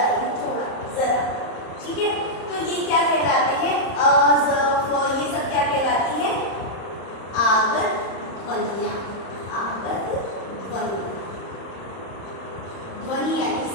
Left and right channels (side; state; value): right; late; 30 ms